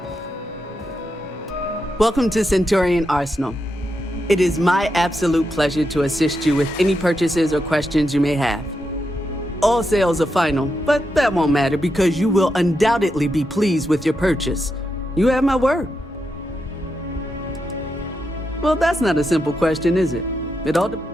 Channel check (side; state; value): both; normal; correlation 0.85